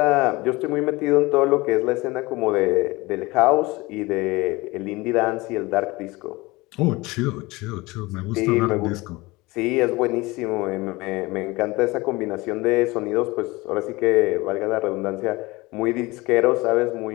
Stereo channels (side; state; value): right; quieter; 22.2 dB